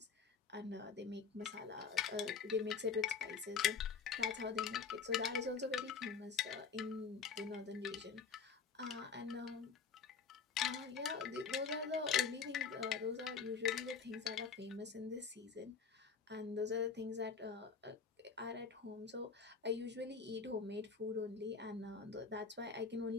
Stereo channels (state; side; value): quieter; right; 5.7 dB